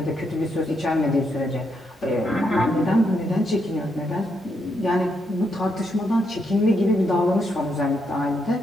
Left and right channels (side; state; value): both; normal; correlation 0.79